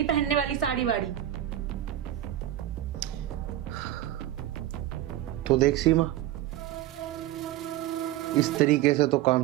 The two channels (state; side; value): quieter; left; 13.4 dB